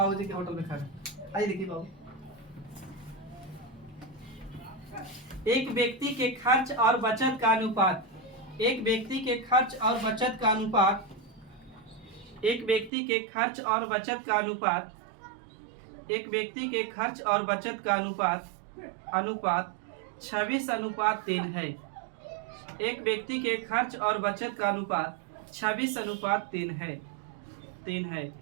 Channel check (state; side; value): drops out; left; at 12.9 s